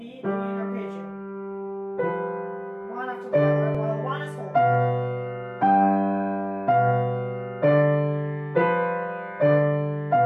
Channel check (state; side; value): identical; both; correlation 1.00